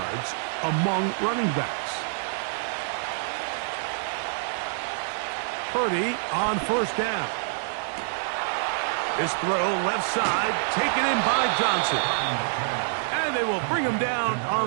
among running backs. Purdy on 1st down. This throw left side taken in by Johnson. And they will bring him down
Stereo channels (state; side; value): silent; left; 61 dB below the other